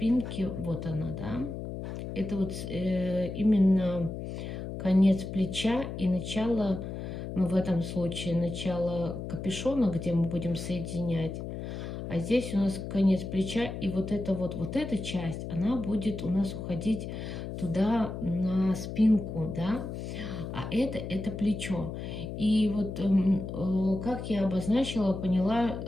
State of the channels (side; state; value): left; noise; hum, 7 dB below the sound